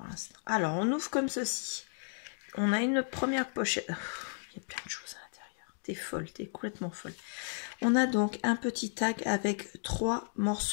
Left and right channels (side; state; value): right; silent; digital silence